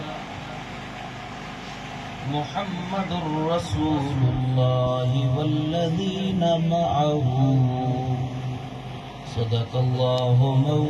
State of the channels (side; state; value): both; identical; correlation 1.00